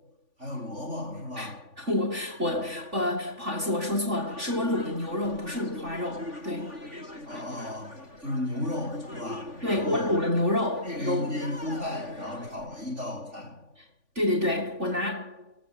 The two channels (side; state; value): left; late; 3.5 ms